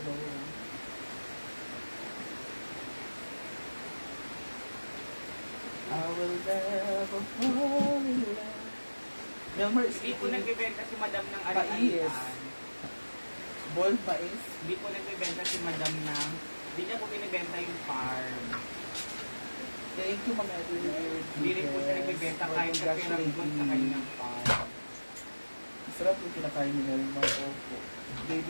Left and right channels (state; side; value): inverted; both; correlation -1.00